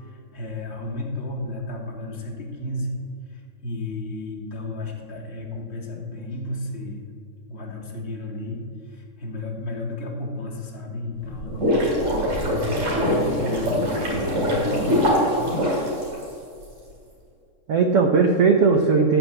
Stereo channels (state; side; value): late; left; 3.7 ms